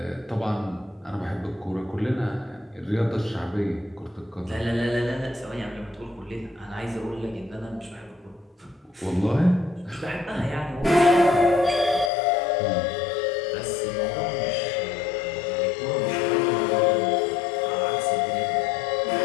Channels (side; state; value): right; drops out; at 12.1 s